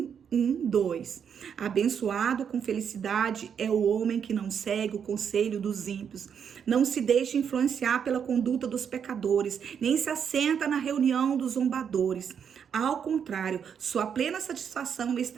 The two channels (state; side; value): quieter; left; 7.5 dB